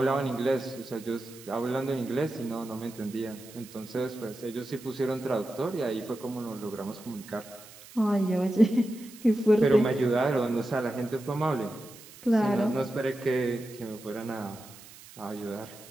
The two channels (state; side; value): noise; right; hiss, 19 dB below the sound